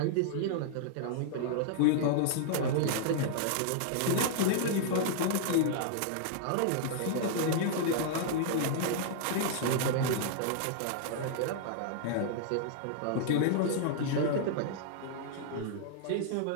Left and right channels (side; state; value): both; different; correlation -0.01